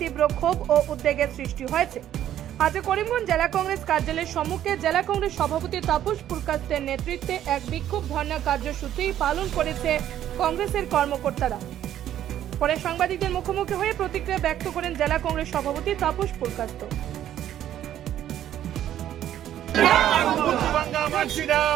তীব্র ক্ষোভ ও উদ্বেগের সৃষ্টি হয়েছে। আজ করিমগঞ্জ জেলা কংগ্রেস কার্যালয়ের সম্মুখে জেলা কংগ্রেস সভাপতি তাপস পুরকাস্তের নেতৃত্বে এক বিক্ষোভ ধর্ণা কার্যসূচি পালন করেছে কংগ্রেসের কর্মকর্তারা। পরে সাংবাদিকদের মুখোমুখি হয়ে প্রতিক্রিয়া ব্যক্ত করেন জেলা কংগ্রেস সভাপতি তাপস পুরকাস্ত।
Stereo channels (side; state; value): left; quieter; 11.4 dB